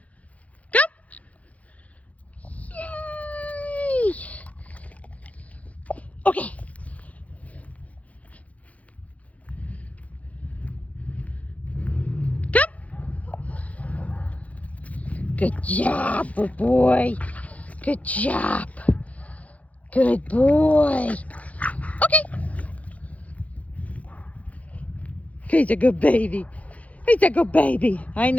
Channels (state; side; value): late; right; 0.068 ms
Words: Come. Yay! Okay. Come. Good job, good boy. Good job. Good boy. Okay. He's a good baby. He's a good baby. I